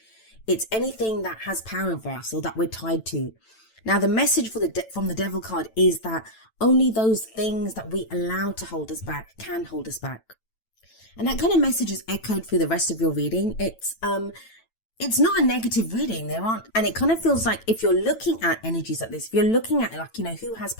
It's anything that has power over us or that we're tied to. Now, the message from the Devil card is that only those things that we allow to hold us back can hold us back. And that kind of message is echoed through the rest of your reading. It's not a negative reading. And it kind of feels like if you're looking at energies like this, if you're looking at who has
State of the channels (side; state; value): right; late; 9.0 ms